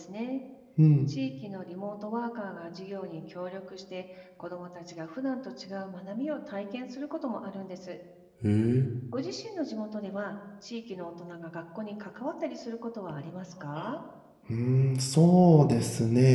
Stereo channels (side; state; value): both; identical; correlation 1.00